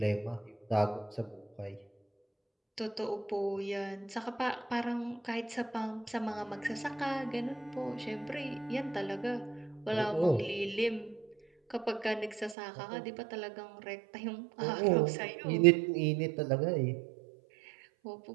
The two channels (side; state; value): left; drops out; at 12.6 s